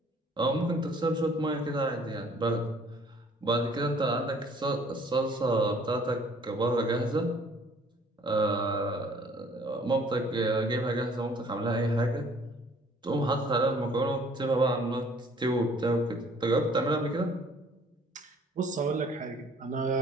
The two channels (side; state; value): both; normal; correlation 0.57